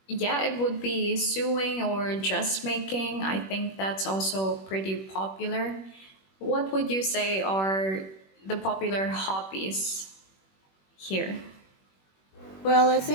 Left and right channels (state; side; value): late; right; 21 ms